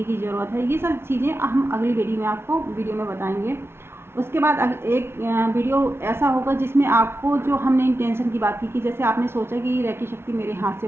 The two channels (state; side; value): late; left; 0.12 ms